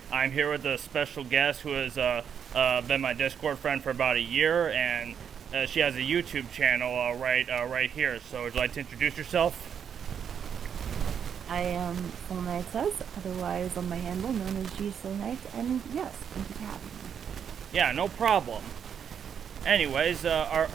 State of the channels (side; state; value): left; quieter; 7.8 dB